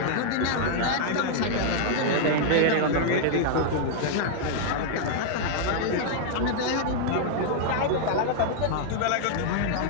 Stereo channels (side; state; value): both; different; correlation -0.01